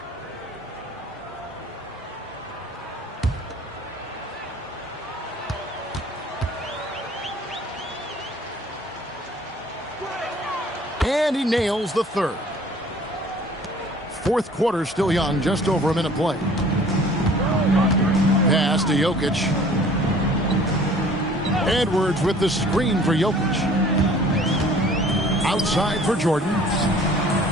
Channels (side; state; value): both; normal; correlation 0.51